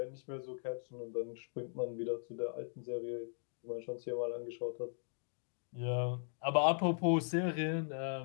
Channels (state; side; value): silent; right; digital silence